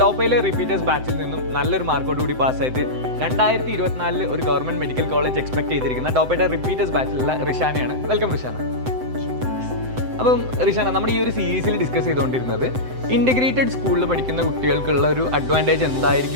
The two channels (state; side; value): late; left; 7.8 ms